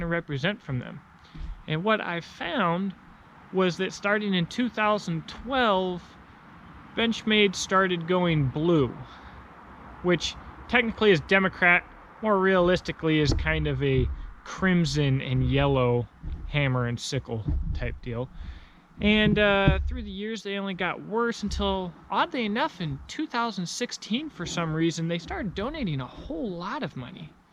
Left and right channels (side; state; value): both; identical; correlation 1.00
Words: to represent from them. And what I found was that starting in 2012, Benchmade started going blue, which technically is Democrat, more realistically is kind of a crimson and yellow hammer and sickle type deal. And through the years, they only got worse until, oddly enough, in 2016, for some reason, they started donating a whole lot of money.